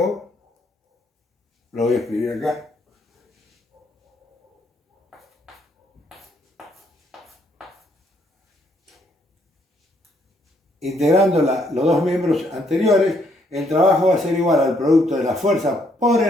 lo voy a escribir acá, integrando los dos miembros anteriores, el trabajo va a ser igual al producto de la fuerza por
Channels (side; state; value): both; normal; correlation 0.71